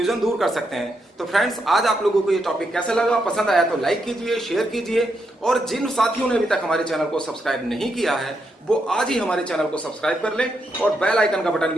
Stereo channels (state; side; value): normal; both; correlation 0.81